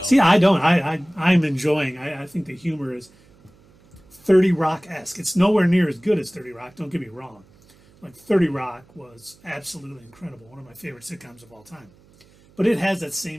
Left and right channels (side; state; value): right; noise; hum, 29 dB below the sound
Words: See, I don't. I'm enjoying. I think the humor is 30 Rock-esque. It's nowhere near as good as 30 Rock. Don't get me wrong. Like 30 Rock was absolutely incredible. One of my favorite sitcoms of all time. But it has that